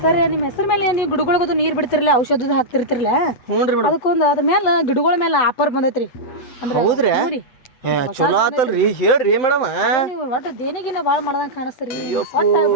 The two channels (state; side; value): late; right; 8.3 ms